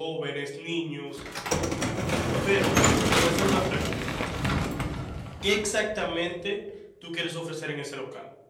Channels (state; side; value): identical; both; correlation 1.00